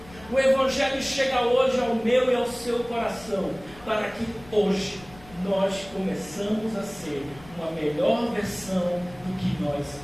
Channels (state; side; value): noise; left; rumble, 21 dB below the sound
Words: O Evangelho chega hoje ao meu e ao seu coração, para que hoje nós começamos a ser uma melhor versão do que nós